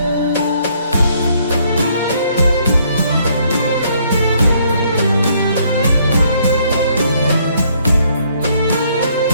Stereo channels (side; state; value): both; inverted; correlation -0.67